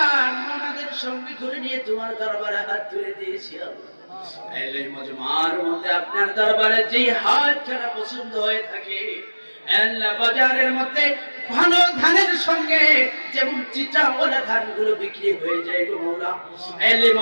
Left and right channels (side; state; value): both; inverted; correlation -1.00